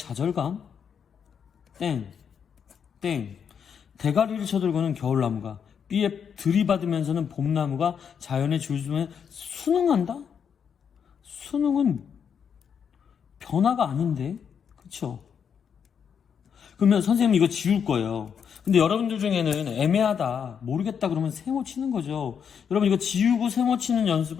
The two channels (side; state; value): right; quieter; 7.3 dB